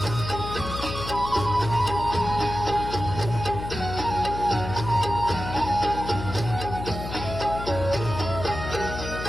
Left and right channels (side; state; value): left; noise; hum, 7 dB below the sound